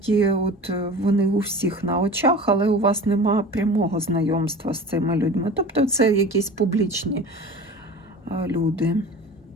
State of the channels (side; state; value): both; normal; correlation 0.37